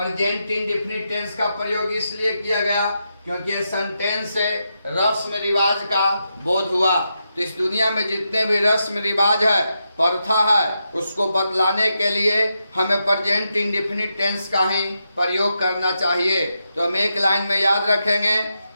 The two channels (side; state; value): both; inverted; correlation -0.85